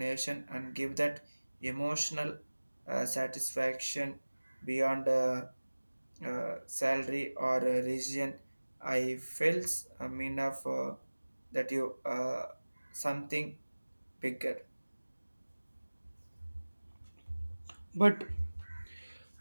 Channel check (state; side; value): inverted; both; correlation -1.00